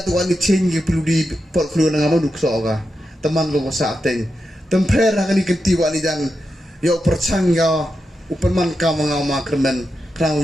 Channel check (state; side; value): normal; both; correlation 0.88